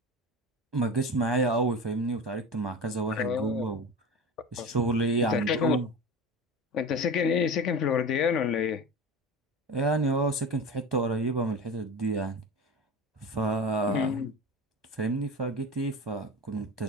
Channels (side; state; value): both; normal; correlation 0.30